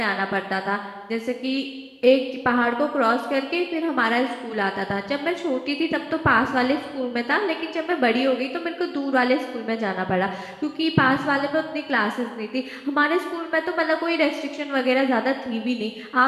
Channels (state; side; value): identical; both; correlation 1.00